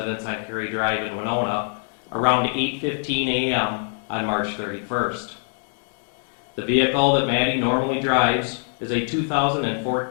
on Cary Drive in Winona around 8:15 a.m. on March 31st. The vehicle that Maddie normally drives is a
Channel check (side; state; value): right; silent; 58 dB below the other